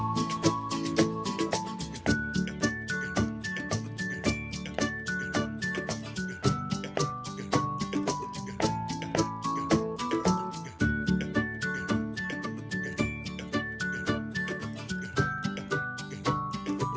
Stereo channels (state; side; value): identical; both; correlation 1.00